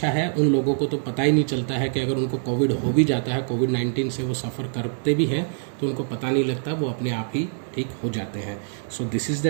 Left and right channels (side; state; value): left; silent; digital silence